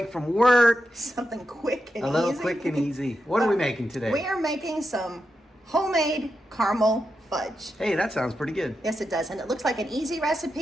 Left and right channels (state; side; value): normal; both; correlation 0.87